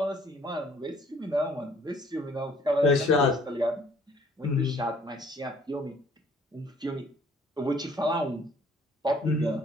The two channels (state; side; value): normal; both; correlation 0.59